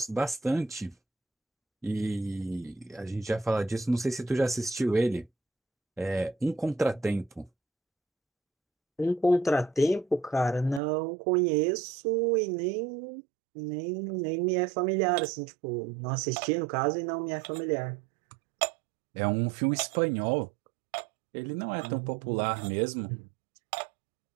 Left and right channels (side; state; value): left; drops out; at 10.8 s